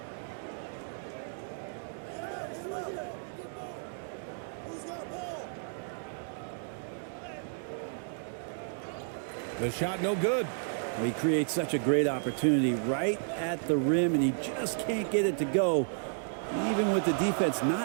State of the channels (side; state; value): left; silent; digital silence